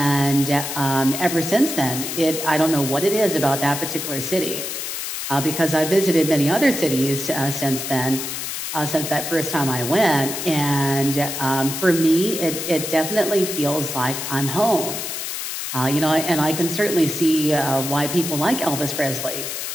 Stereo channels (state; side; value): noise; left; hiss, 5 dB below the sound